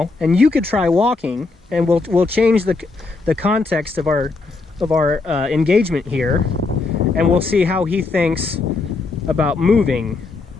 and you could try walking, and we'll change the context of our engagement here, and we'll see how he thinks about moving.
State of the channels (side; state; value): right; quieter; 3.8 dB